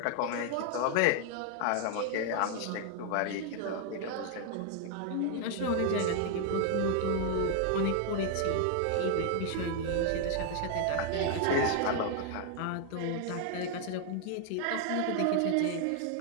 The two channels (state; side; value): different; both; correlation 0.00